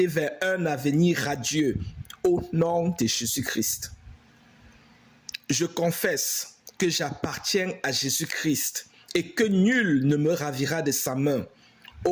vers un avenir radieux au nom de Jésus-Christ. Je confesse que j'appartiens à Jésus-Christ et que nul ne me ravira de sa main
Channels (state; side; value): identical; both; correlation 1.00